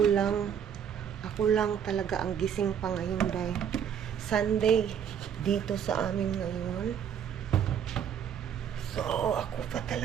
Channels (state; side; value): quieter; left; 8.5 dB